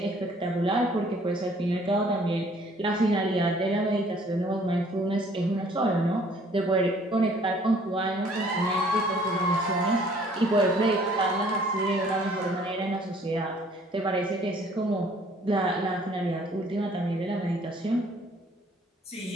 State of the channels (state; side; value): normal; both; correlation 0.58